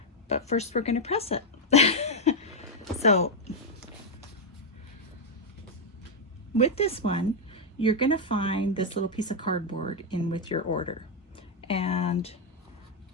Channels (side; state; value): both; normal; correlation 0.01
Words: But first we're going to press it. So with this one, you're going to find this little piece of cardboard in with your order. And